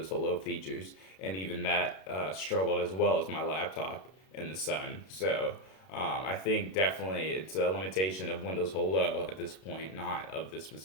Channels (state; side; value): late; right; 32 ms